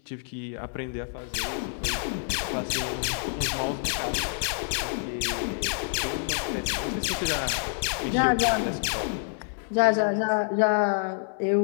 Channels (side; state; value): right; silent; digital silence